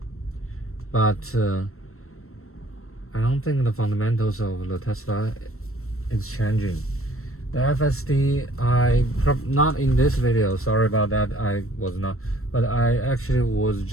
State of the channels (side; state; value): right; late; 0.63 ms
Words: but I don't think the fundamentals of the Tesla is changing. The FSD, not in this video, sorry about that, I was not, but I actually was